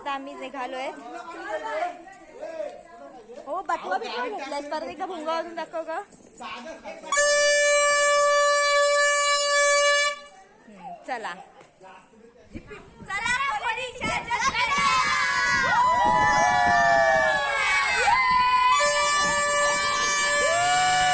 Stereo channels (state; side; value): identical; both; correlation 1.00